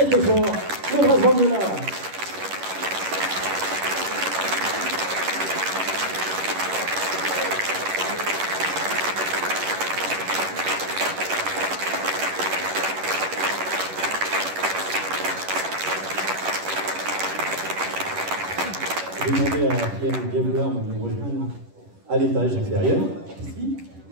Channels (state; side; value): late; left; 11 ms